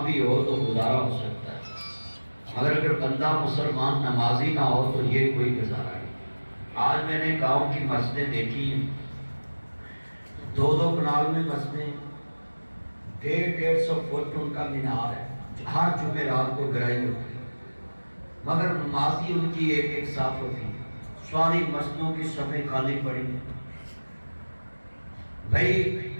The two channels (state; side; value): inverted; both; correlation -1.00